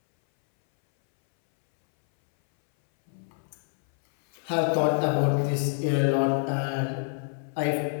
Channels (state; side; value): silent; right; 60 dB below the other